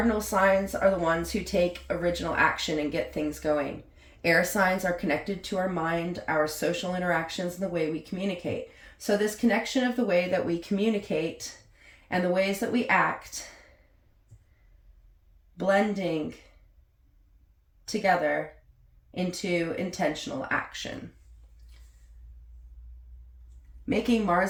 signs are the ones who take original action and get things going. Air signs are connected to our mind, our social interactions, and the way we communicate. So this connection of the way that we communicate and the ways that we act, blending together into intentional action. Making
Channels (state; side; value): identical; both; correlation 1.00